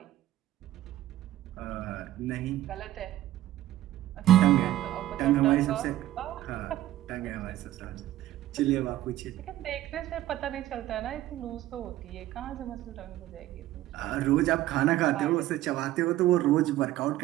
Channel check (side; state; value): left; quieter; 14.3 dB